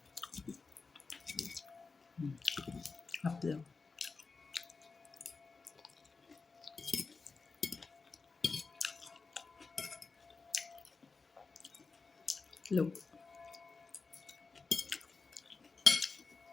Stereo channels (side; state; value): right; quieter; 4.4 dB